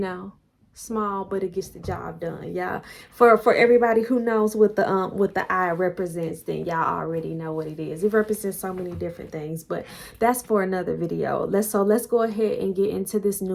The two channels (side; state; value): both; identical; correlation 1.00